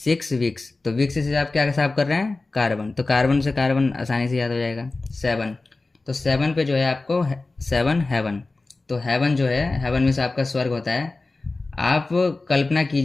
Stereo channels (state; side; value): quieter; right; 3.4 dB